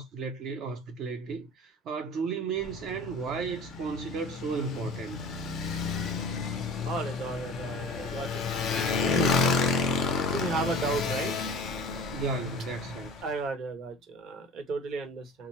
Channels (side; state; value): both; normal; correlation 0.41